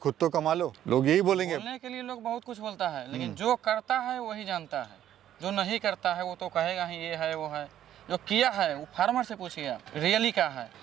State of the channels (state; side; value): quieter; left; 11.3 dB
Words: तो कमा लो, लोग यही बोलेंगे। बोलने के लिए लोग बहुत कुछ बोलता है, लेकिन जो करता है वही जानता है। जो नहीं करता है वो तो कहेगा ही ये है वो है। जो किया है वो फार्मर से पूछिए आप, रियली क्या है।